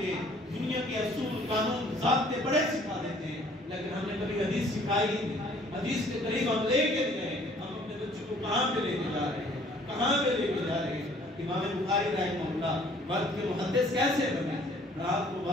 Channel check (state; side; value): normal; both; correlation 0.57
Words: ہیں، دنیا کے اصول قانون ضابطے بڑے سکھا دیتے ہیں، لیکن ہم نے کبھی حدیث سکھائی نہیں۔ حدیث کے قریب ہم لے کے نہیں گئے، ہم اپنے بچوں کو کہاں پہ لے کے جا رہے ہیں، کہاں پہ لے کے جا رہے ہیں۔ امام بخاری رحمہ اللہ وقت کے محدث کیسے بنے؟ رات کو